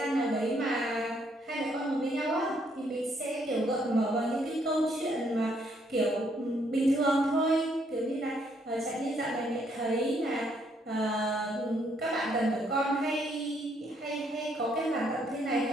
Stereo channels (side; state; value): both; normal; correlation 0.70